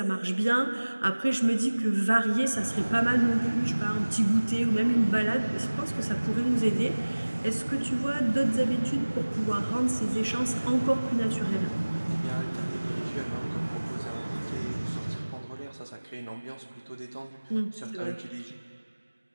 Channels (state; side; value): inverted; both; correlation -1.00